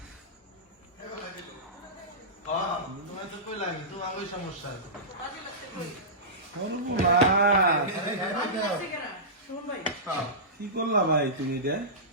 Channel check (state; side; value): normal; both; correlation -0.18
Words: কি করলা ভাই তুমি এটা?